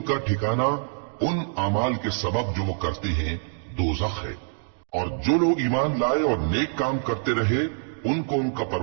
ठिकाना उन अमाल के सबब जो वो करते हैं दोज़ख है। और जो लोग ईमान लाए और नेक काम करते रहे, उनको उनका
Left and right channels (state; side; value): silent; left; digital silence